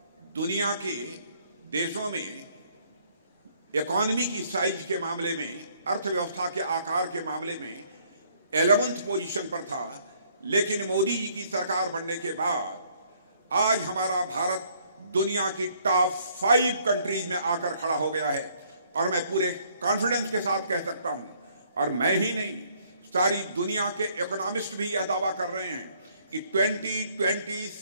दुनिया के देशों में इकोनॉमी की साइज के मामले में, अर्थव्यवस्था के आकार के मामले में 11th पोजीशन पर था। लेकिन मोदी जी की सरकार बनने के बाद आज हमारा भारत दुनिया की टॉप 5 कंट्रीज में आकर खड़ा हो गया है और मैं पूरे कॉन्फिडेंस के साथ कह सकता हूं, और मैं ही नहीं, सारी दुनिया के इकोनॉमिस्ट भी यह दावा कर रहे हैं कि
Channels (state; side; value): inverted; both; correlation -0.65